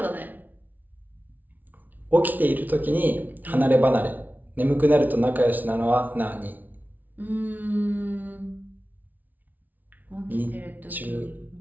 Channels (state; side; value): late; left; 0.080 ms